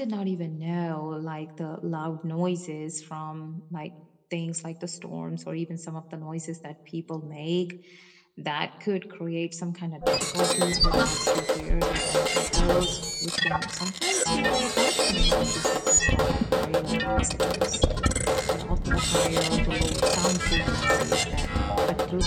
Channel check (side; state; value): both; identical; correlation 1.00